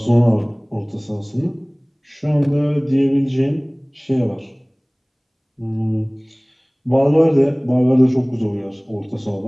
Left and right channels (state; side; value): identical; both; correlation 1.00